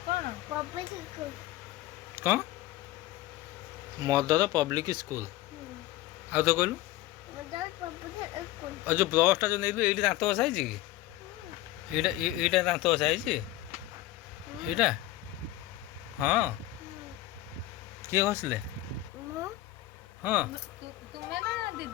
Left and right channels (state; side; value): quieter; right; 15.8 dB